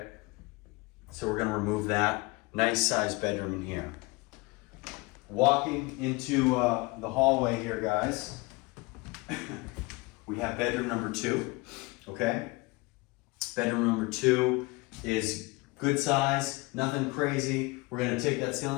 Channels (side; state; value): right; quieter; 24.3 dB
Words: So we're gonna remove that. Nice sized bedroom in here. Walking into the hallway here, guys, we have bedroom number two, okay? Bedroom number two is good size, nothing crazy. We're gonna take that